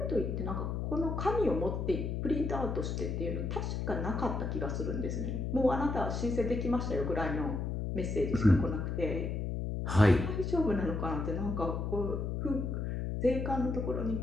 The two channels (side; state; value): left; noise; hum, 2 dB below the sound